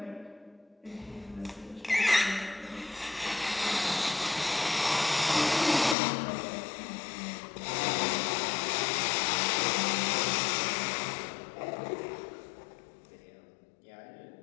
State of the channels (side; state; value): right; drops out; at 6.0 s